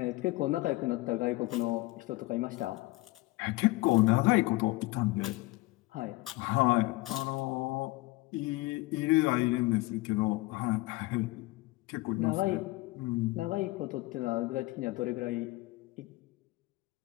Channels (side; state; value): right; quieter; 20.9 dB